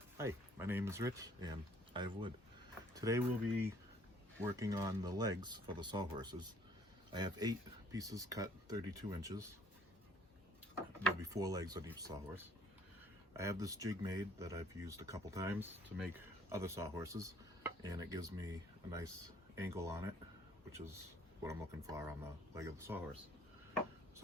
Hi, my name is Rich and I have wood. Today we'll be working on the legs for the sawhorses. I have 8 pieces cut 32 inches. There'll be 4 legs on each sawhorse. I have this jig made that I've used a couple times to make other sawhorses, and it gives me a nice angle on it, which is what I'm looking for on the leg of the sawhorse.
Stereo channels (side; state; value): both; normal; correlation 0.59